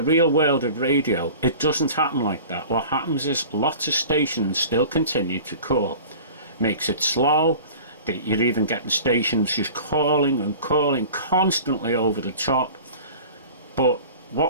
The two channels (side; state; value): both; inverted; correlation -0.40